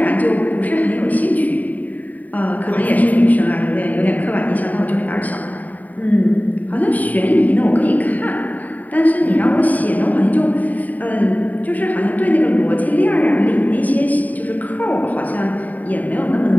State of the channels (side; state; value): right; late; 0.077 ms